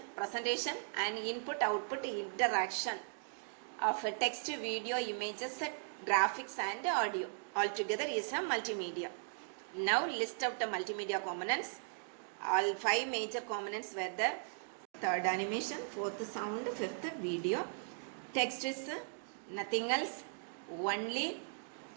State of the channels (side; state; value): left; silent; digital silence